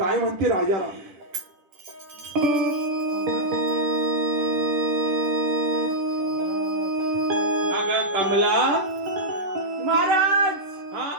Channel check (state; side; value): late; left; 10 ms